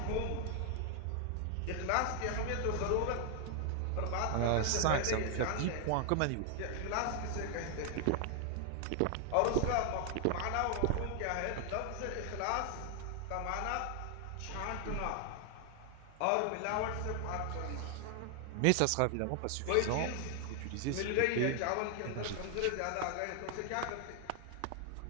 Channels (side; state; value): both; different; correlation 0.00